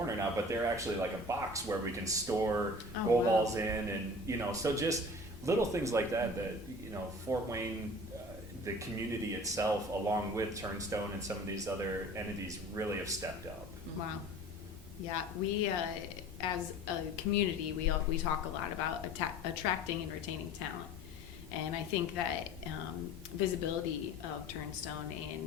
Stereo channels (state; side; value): normal; both; correlation 0.42